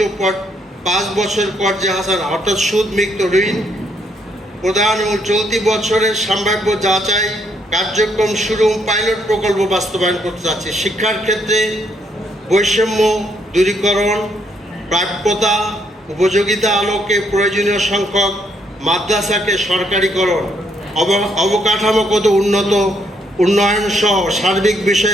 5 বছর কর্জে হাসান অর্থাৎ সুদমুক্ত ঋণ প্রদান এবং চলতি বছরের সম্ভাব্য যাচাই কার্যক্রম শুরু পাইলট প্রকল্প বাস্তবায়ন করতে যাচ্ছে। শিক্ষার ক্ষেত্রে বৈষম্য দূরীকরণ, প্রাপ্যতা উপযোগিতা আলোকে প্রয়োজনীয় সংখ্যক মাদ্রাসাকে সরকারিকরণ, অবকাঠামোগত উন্নয়ন সহ সার্বিক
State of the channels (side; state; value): both; normal; correlation 0.73